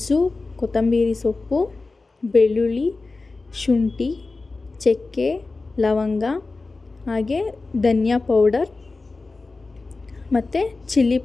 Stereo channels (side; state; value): right; quieter; 3.6 dB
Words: ಕೊತ್ತಂಬರಿ ಸೊಪ್ಪು, ಬೆಳ್ಳುಳ್ಳಿ, ಶುಂಠಿ, ಚಕ್ಕೆ, ಲವಂಗ, ಹಾಗೆ ಧನಿಯಾ ಪೌಡರ್ ಮತ್ತು ಚಿಲ್ಲಿ